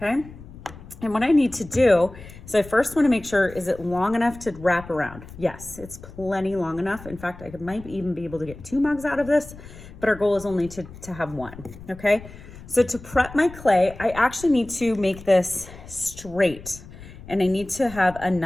And what I need to do is I first want to make sure, is it long enough to wrap around? Yes, it's plenty long enough. In fact, I might even be able to get 2 mugs out of this, but our goal is only to have 1, okay? So to prep my clay, I actually need to make this straight, and I need to have a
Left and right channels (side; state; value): left; noise; rumble, 17 dB below the sound